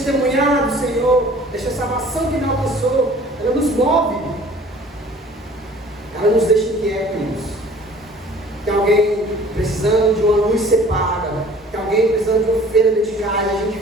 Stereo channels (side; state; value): both; normal; correlation 0.50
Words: do Senhor, desta salvação que Ele alcançou. Ela nos move. Ela nos deixa inquietos. Tem alguém precisando de uma luz ser paga. Tem alguém precisando de uma feira dedicada. A gente